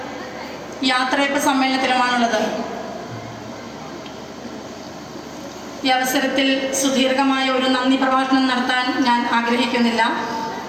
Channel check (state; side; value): identical; both; correlation 1.00